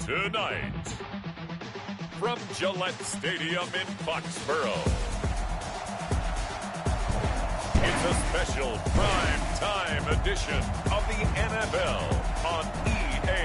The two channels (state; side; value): identical; both; correlation 1.00